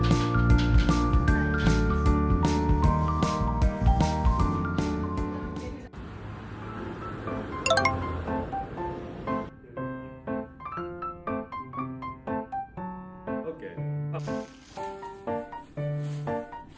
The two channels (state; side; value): identical; both; correlation 1.00